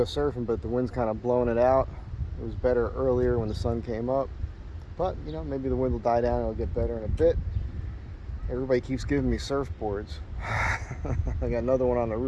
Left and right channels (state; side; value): identical; both; correlation 1.00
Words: go surfing, but the wind's kind of blowing it out. It was better earlier when the sun came up. But, you know, maybe the wind will die down and it'll get better in a bit. Everybody keeps giving me surfboards. I got another one on the